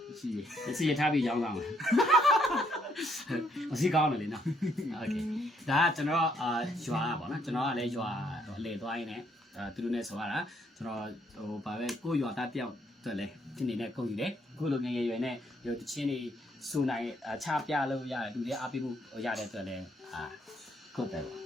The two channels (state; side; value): normal; both; correlation 0.71